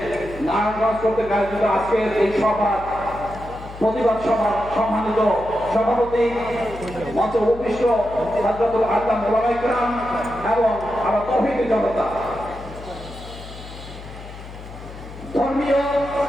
নারায়ণগঞ্জ কর্তৃক আয়োজিত আজকের এই সভা প্রতিবাদ সভার সম্মানিত সভাপতি মঞ্চে উপবিষ্ট হযরতুল আল্লামা ওলামায়ে কেরাম এবং আমার তৌহিদি জনতা, ধর্মীয়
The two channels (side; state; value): left; noise; hum, 14 dB below the sound